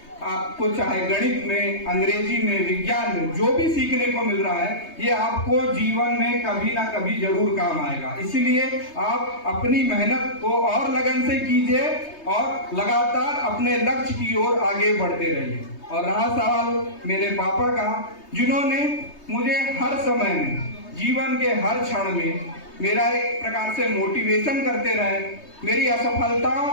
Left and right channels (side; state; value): right; late; 3.2 ms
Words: आपको चाहे गणित में, अंग्रेजी में, विज्ञान में जो भी सीखने को मिल रहा है ये आपको जीवन में कभी ना कभी जरूर काम आएगा। इसीलिए आप अपनी मेहनत को और लगन से कीजिए और लगातार अपने लक्ष्य की ओर आगे बढ़ते रहिए। और रहा सवाल मेरे पापा का, जिन्होंने मुझे हर समय में, जीवन के हर क्षण में मेरा एक प्रकार से मोटिवेशन करते रहे, मेरी असफलताओं